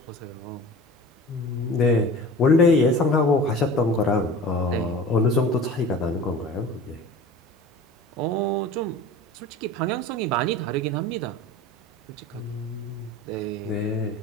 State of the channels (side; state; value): both; normal; correlation 0.38